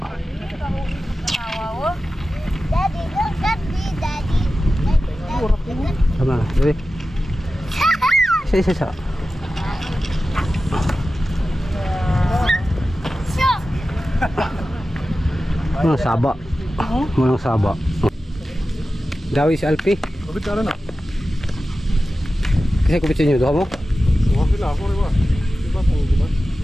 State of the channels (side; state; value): both; normal; correlation 0.94